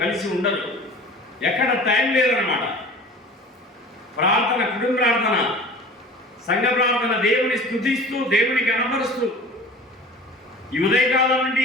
ఉండరు. ఎక్కడ టైం లేదన్నమాట. ప్రార్థన, కుటుంబ ప్రార్థన, సంఘ ప్రార్థన, దేవుని స్తుతిస్తూ దేవుని కనపరుస్తూ ఈ ఉదయకాలం నుండి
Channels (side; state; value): both; normal; correlation 0.40